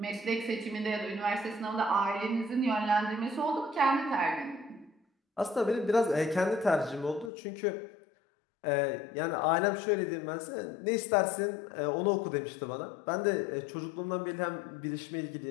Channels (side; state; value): right; drops out; at 7.3 s